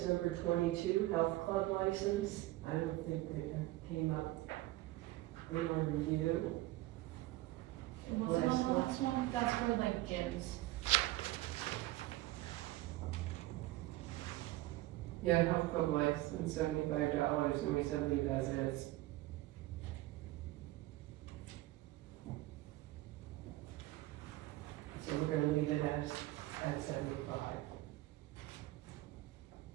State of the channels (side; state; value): left; quieter; 17.9 dB